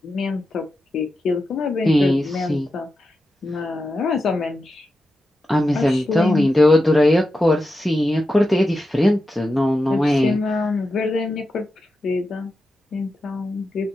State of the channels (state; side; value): normal; both; correlation 0.90